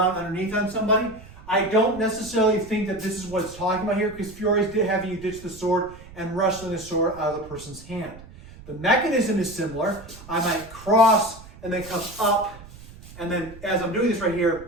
underneath on somebody. I don't necessarily think that this is what it's talking about here, because Fiore's having you ditch the sword and wrestling the sword out of the person's hand. The mechanism is similar. I might cross and then come up, and then as I'm doing this right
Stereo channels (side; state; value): right; noise; rumble, 18 dB below the sound